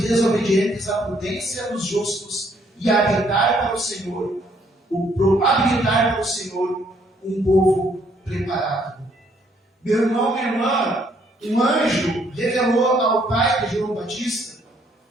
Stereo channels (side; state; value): both; normal; correlation 0.67